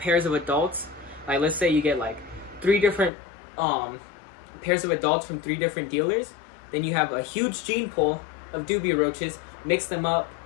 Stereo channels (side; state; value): right; drops out; at 3.1 s